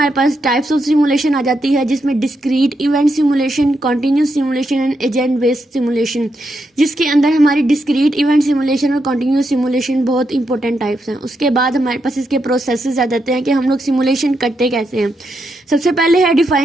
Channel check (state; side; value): normal; both; correlation 0.82